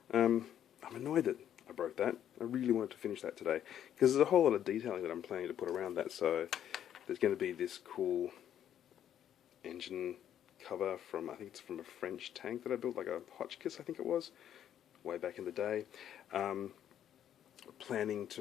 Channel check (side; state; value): right; quieter; 10.2 dB